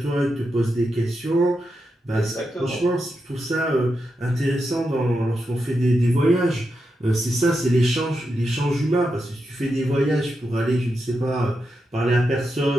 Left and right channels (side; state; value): both; normal; correlation 0.87